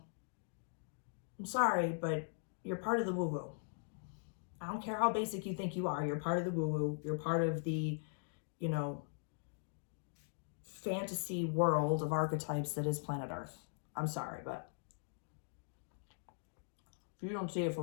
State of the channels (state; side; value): silent; right; digital silence